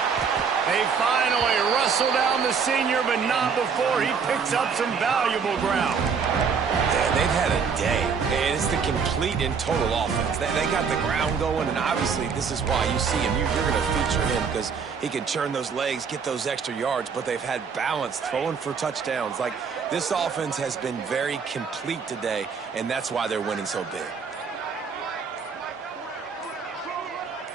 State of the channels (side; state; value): left; quieter; 6.0 dB